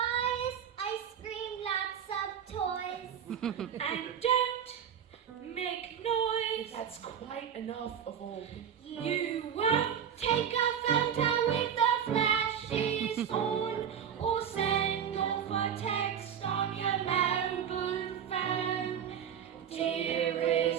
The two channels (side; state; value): left; quieter; 8.5 dB